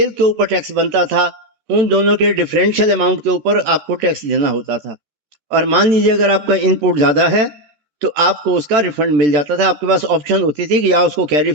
के ऊपर टैक्स बनता था उन दोनों के डिफरेंशियल अमाउंट के ऊपर आपको टैक्स देना होता था। और मान लीजिए अगर आपका इनपुट ज्यादा है तो आपको उसका रिफंड मिल जाता था। आपके पास ऑप्शन होती थी कि या उसको कैरी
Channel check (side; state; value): left; late; 13 ms